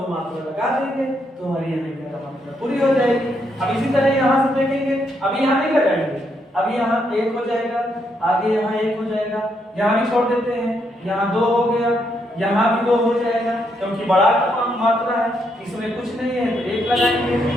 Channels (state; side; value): normal; both; correlation 0.77